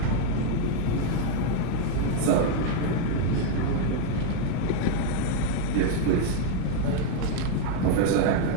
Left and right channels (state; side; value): different; both; correlation 0.01